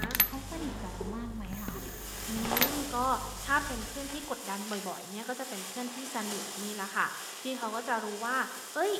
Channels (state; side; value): identical; both; correlation 1.00